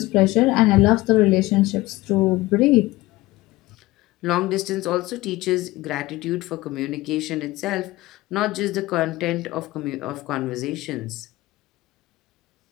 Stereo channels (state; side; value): quieter; right; 19.0 dB